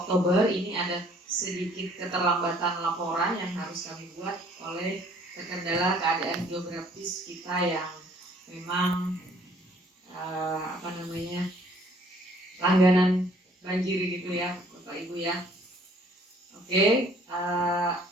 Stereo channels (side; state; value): both; normal; correlation 0.59